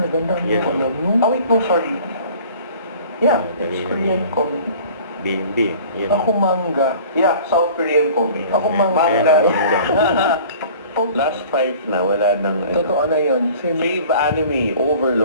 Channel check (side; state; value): both; inverted; correlation -0.46